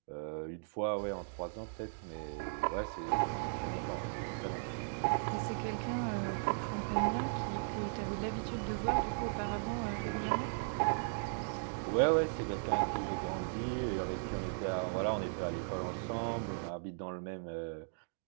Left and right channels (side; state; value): left; silent; digital silence